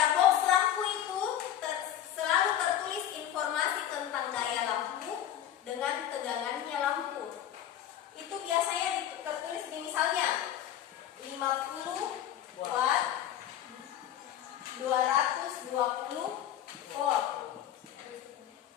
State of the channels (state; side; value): quieter; right; 11.1 dB